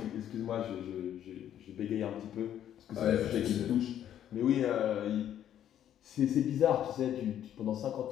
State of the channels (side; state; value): right; quieter; 10.6 dB